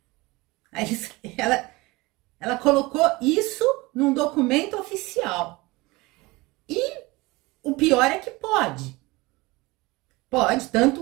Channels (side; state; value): left; quieter; 22.5 dB